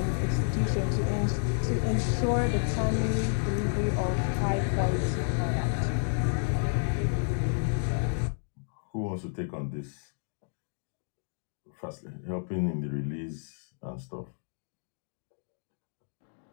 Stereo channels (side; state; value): right; silent; digital silence